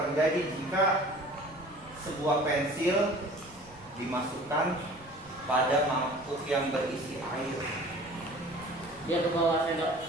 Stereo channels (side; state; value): right; noise; rumble, 24 dB below the sound